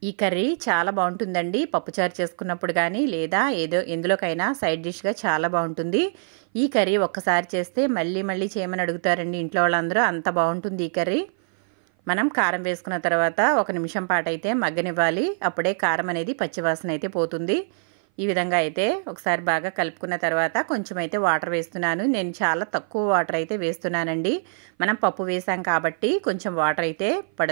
ఈ కర్రీ చాలా బాగుంటుందండి. పప్పుచారు చేసుకున్నప్పుడు కానీ లేదా ఎందులోకైనా సైడ్ డిష్గా చాలా బాగుంటుంది. ఈ కర్రీ ఒక్కసారి చేస్తే మళ్ళీ చేయమని అడుగుతారండి ఇంట్లో వాళ్ళందరూ. అంత బాగుంటుంది ఈ కర్రీ. మనం కారం వేసుకున్న తర్వాత 1 నిమిషం పాటు అయితే మగ్గనివ్వాలి. అప్పుడే కారం అనేది పచ్చివాసన అయితే పోతుంది. ఈ విధంగా అయితే ఒకసారి బాగా కలుపుకున్న తర్వాత కొంచెం అయితే వాటర్ వేస్తున్నాను. నేను చాలా తక్కువ వాటర్ అయితే వేస్తున్నానండి. మనం పప్పు వేసాం కాబట్టి కొంచెం వాటర్ అయితే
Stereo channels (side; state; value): left; silent; 58 dB below the other